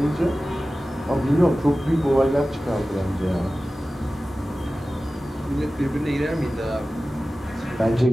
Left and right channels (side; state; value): both; normal; correlation 0.96